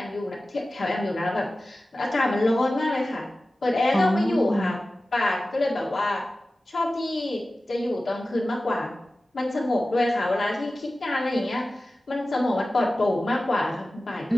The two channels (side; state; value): both; normal; correlation 0.96